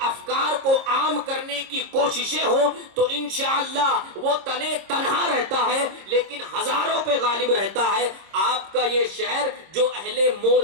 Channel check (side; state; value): left; late; 26 ms